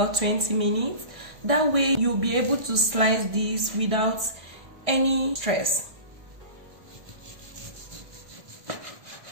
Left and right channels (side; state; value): left; late; 1.6 ms